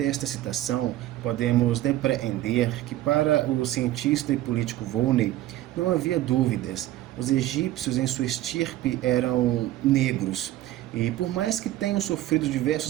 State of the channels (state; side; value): quieter; left; 14.8 dB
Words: citação, podemos depreender que para o cientista e político Volney não havia dúvidas. Os egípcios em sua estirpe eram negros, e por mais que tenham sofrido